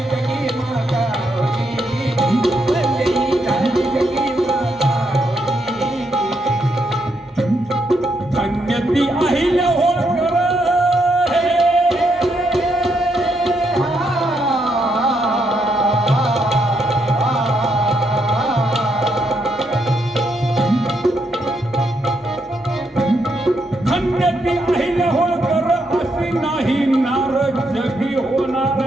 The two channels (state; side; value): normal; both; correlation 0.78